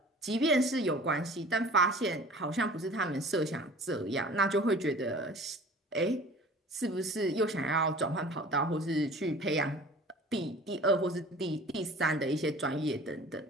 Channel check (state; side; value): normal; both; correlation 0.45